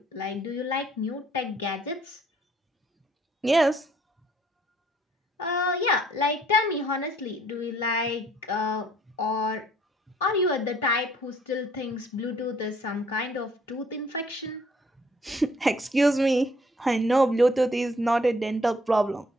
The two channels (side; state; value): both; normal; correlation 0.62